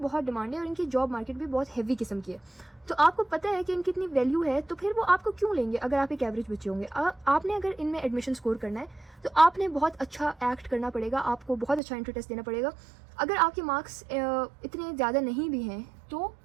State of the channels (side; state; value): left; drops out; at 11.8 s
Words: डिमांड है और इनकी जॉब मार्केट भी बहुत हैवी किस्म की है। तो आपको पता है कि इनकी इतनी वैल्यू है, तो फिर वो आपको क्यों लेंगे अगर आप एक एवरेज बच्चे होंगे। आपने अगर इनमें एडमिशन स्कोर करना है तो आपने बहुत अच्छा एक्ट करना पड़ेगा, आपको बहुत अच्छा एंट्री टेस्ट देना पड़ेगा। अगर आपके मार्क्स इतने ज़्यादा नहीं भी हैं तो